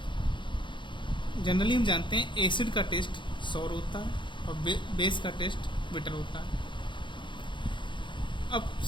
जनरली हम जानते हैं एसिड का टेस्ट सॉर होता है और बेस का टेस्ट बिटर होता है। अब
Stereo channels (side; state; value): right; late; 0.23 ms